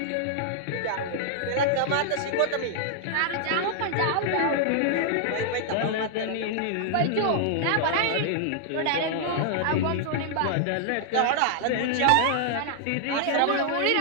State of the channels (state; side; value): different; both; correlation -0.01